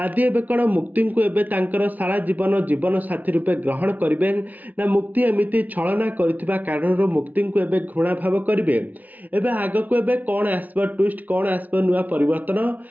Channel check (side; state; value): left; late; 0.077 ms